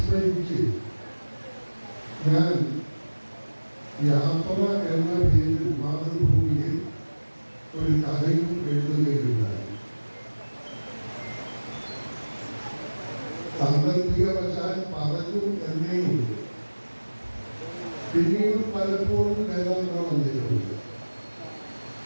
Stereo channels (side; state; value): both; inverted; correlation -1.00